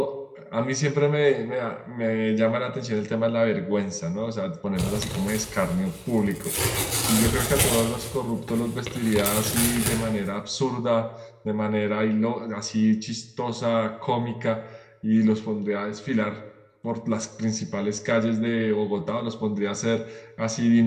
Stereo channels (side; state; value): both; identical; correlation 1.00